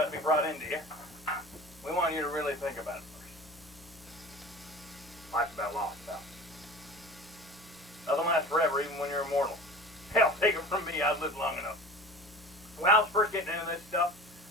to be brought into you, we want you to really think about it first. Life's about lost, pal. Doesn't last forever, even when you're immortal. Hell, take it from me, I've lived long enough. When I was first getting into this stuff,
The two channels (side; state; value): left; noise; hum, 23 dB below the sound